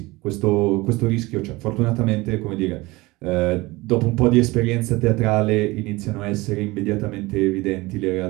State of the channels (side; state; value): left; quieter; 21.6 dB